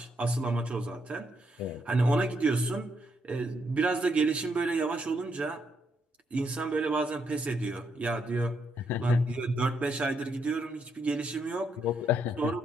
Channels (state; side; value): normal; both; correlation 0.77